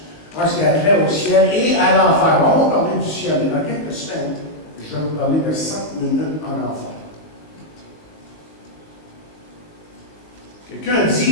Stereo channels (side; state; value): right; late; 19 ms